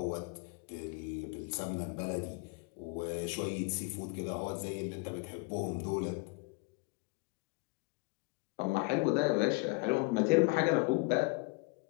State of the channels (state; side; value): quieter; right; 28.5 dB